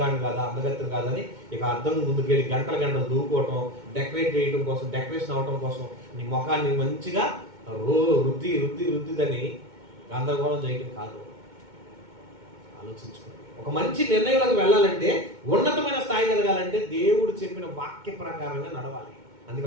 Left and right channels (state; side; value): late; left; 2.2 ms